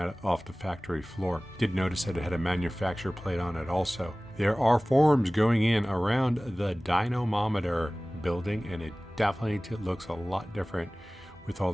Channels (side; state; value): both; normal; correlation 0.98